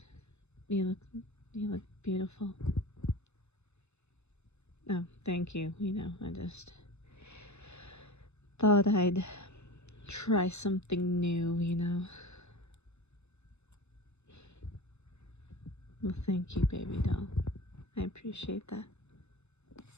You look beautiful. Oh, thank you. You know, I just thought I'd try something new, you know. Well, thank you, baby doll. I appreciate that.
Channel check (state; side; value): late; right; 0.81 ms